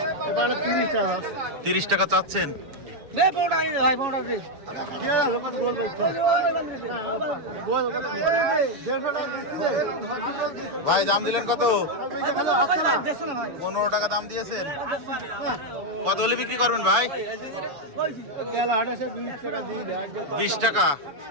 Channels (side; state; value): left; late; 7.1 ms